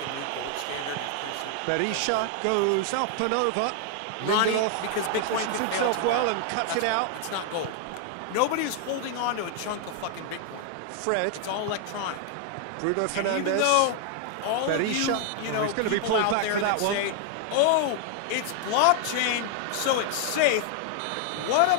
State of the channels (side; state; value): both; different; correlation 0.00